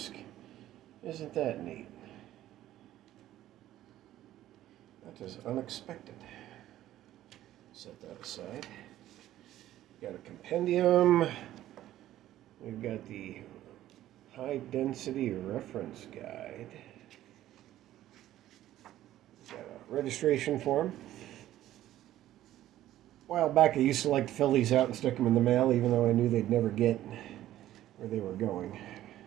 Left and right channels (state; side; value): quieter; left; 13.5 dB